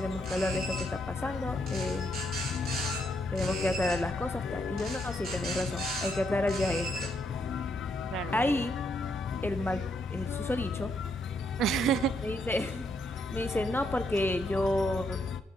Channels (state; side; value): normal; both; correlation 0.76